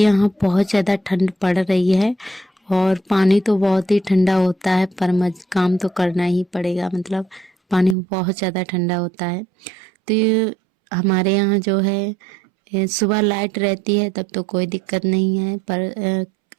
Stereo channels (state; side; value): drops out; left; at 8.0 s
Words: बहुत ज़्यादा ठंड पड़ रही है और पानी तो बहुत ही ठंडा होता है, पर काम तो करना ही पड़ेगा, मतलब पानी बहुत ज़्यादा ठंडा होता है। तो ये हमारे यहाँ जो है सुबह लाइट रहती है तब तो कोई दिक्कत नहीं है, पर